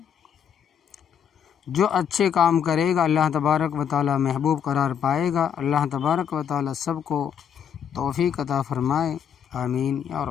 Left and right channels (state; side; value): quieter; right; 8.1 dB